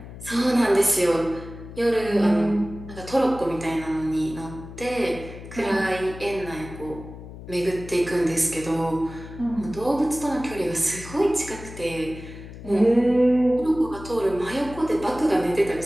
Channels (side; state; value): left; noise; hum, 14 dB below the sound